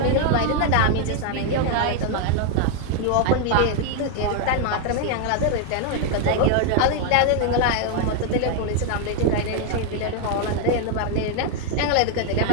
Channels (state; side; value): different; both; correlation 0.00